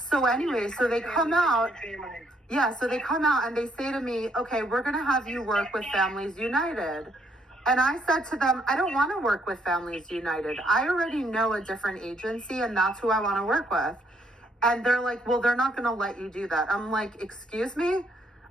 anyway, so they come out. Yeah, so they come out and they say to me, okay, we're going to have you work with Families United. And I said to them, I don't want to work with Families United. I already know a different agency and that's who I want to work with. And they're like, well, they're not going to let you do that. I'm like, excuse me?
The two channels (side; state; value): both; normal; correlation 0.70